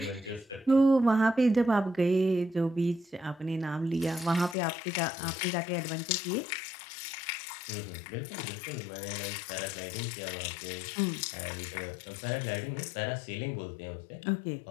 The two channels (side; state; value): right; drops out; at 4.5 s